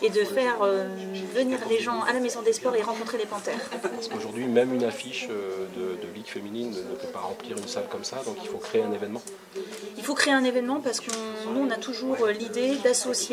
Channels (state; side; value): identical; both; correlation 1.00